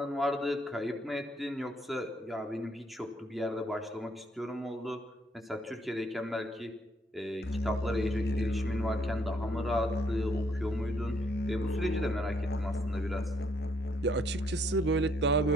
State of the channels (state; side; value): normal; both; correlation 0.69